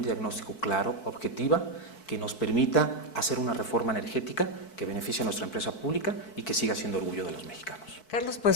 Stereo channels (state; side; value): late; right; 4.6 ms